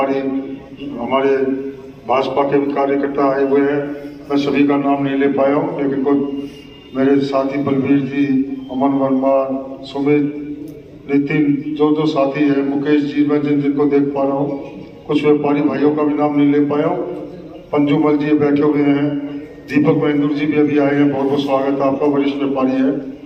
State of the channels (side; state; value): both; identical; correlation 1.00